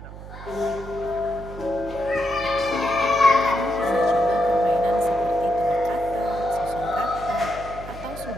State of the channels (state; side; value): noise; right; hum, 13 dB below the sound